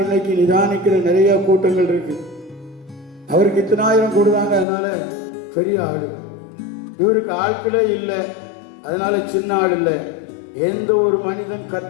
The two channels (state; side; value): drops out; right; at 4.7 s